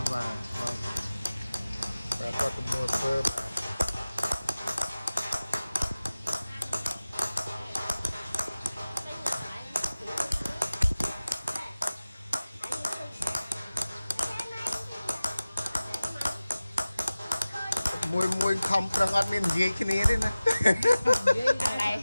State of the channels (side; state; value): both; inverted; correlation -0.97